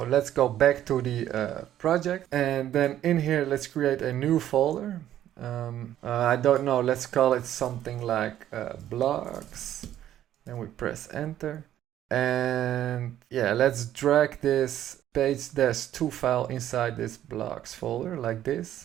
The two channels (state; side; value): quieter; left; 11.9 dB